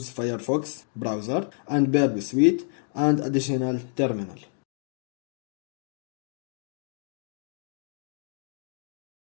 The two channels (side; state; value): right; silent; 59 dB below the other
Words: Firefox browser and Burp Suite and additional terminal.